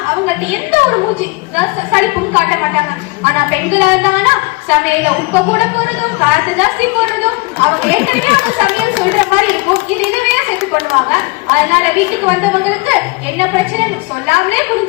அவங்கள்ட்ட எந்த ஒரு மூச்சு சளிப்பும் காட்ட மாட்டாங்க. ஆனா பெண்களா இருந்தாங்கன்னா சமையல உப்ப கூட போறதும் காரத்தை ஜாஸ்தி போடுறதும் அவங்க ஏற்கனவே அவங்க சமையல் சொல்ற மாதிரி இருக்கும். இது இதுவே சேர்த்து பண்ணுவாங்க. அதனால வீட்டுக்கு வந்தவங்களுக்கு என்ன பிரச்சனைன்னு சொல்லாமலே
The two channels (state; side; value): quieter; right; 26.0 dB